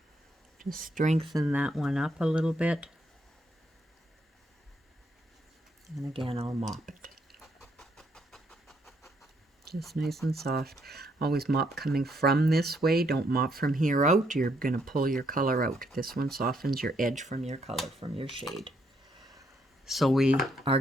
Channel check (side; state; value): both; normal; correlation 0.73